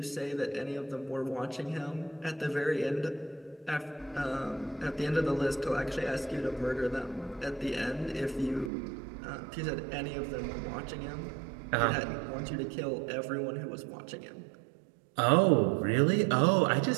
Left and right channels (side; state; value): left; drops out; at 8.7 s